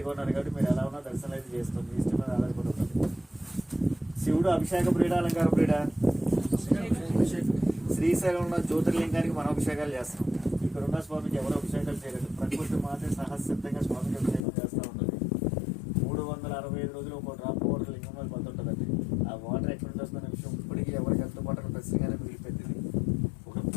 కొన్నారు కాబట్టి మీరు ఎలా ఉన్నా దర్శనం అయితే చేస్తాం. మీ ఇష్టం మీద ఆధారపడి ఉంటుంది. శివుడు అభిషేక ప్రియుడా అలంకార ప్రియుడా? శ్రీశైలం ఉన్న జ్యోతిర్లింగానికి మనం అభిషేకాలు చేస్తాం. ఇక్కడ ఉన్న స్వామికి ఎవరు అభిషేకాలు చేయలేదు. ప్రకృతి మాత్రం సహసిద్ధంగా స్వామికి అభిషేకం చేస్తూ ఉంటుంది. 365 రోజులు ఒక డ్రాప్ వాటర్ లింగం మీద పడుతుంటుందండి. ఆ వాటర్ ఎక్కడ నుంచి వస్తున్న విషయం ఇప్పటికీ ఎవరికి అందుబాటులో ఖచ్చితంగానే మిగిలిపోయింది. ఒక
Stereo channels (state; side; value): drops out; right; at 14.5 s